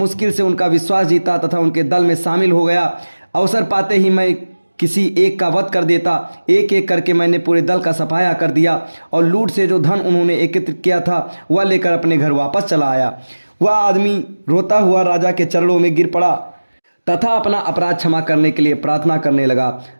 से उनका विश्वास जीता तथा उनके दल में शामिल हो गया। अवसर पाते ही मैं किसी एक का वध कर देता। एक एक करके मैंने पूरे दल का सफाया कर दिया और लूट से जो धन उन्होंने एकत्रित किया था वह लेकर अपने घर वापस चला आया। वह आदमी रोता हुआ राजा के चरणों में गिर पड़ा तथा अपना अपराध क्षमा करने के लिए प्रार्थना करने लगा।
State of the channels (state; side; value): inverted; both; correlation -1.00